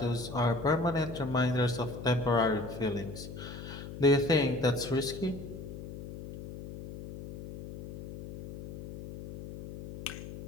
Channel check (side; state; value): left; noise; hum, 11 dB below the sound